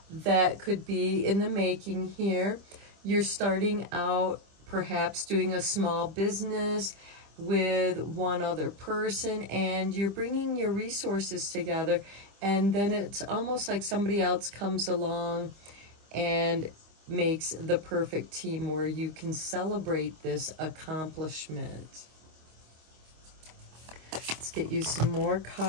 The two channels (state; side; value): late; left; 25 ms